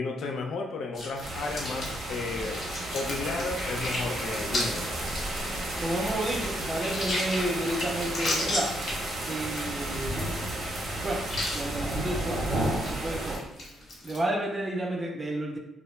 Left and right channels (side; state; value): both; normal; correlation 0.75